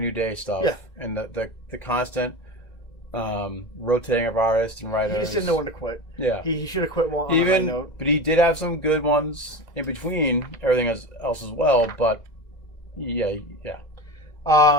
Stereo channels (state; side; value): late; right; 2.0 ms